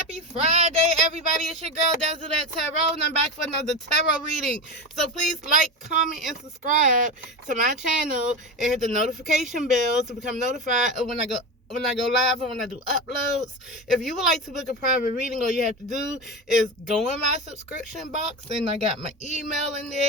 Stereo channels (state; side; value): normal; both; correlation 0.21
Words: Friday, everybody. It's your girl Dazzledattarot, Tarot, and I'm back for another tarot reading. So please like, comment, and subscribe to my channel and hit the notification bell to become notified of when I go live and when I do uploads. If you would like to book a private reading, all you have to do is go in my subscription box, and I got my email in